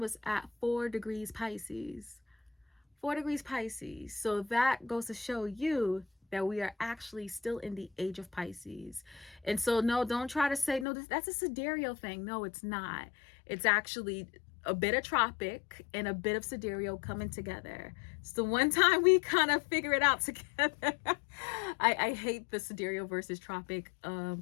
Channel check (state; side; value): drops out; right; at 10.9 s